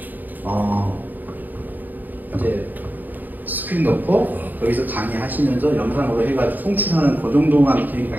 이제 스크린 넣고, 거기서 강의하시면서 영상으로 해가지고 송출하는 그 정도만 기능이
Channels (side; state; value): left; late; 0.087 ms